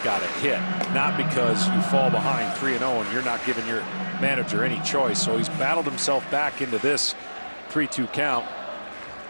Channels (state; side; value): inverted; both; correlation -1.00